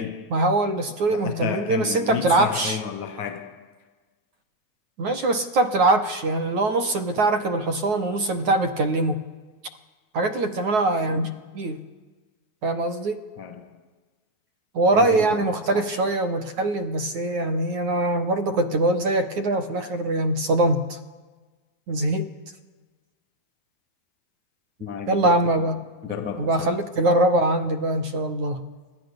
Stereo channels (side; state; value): left; late; 9.4 ms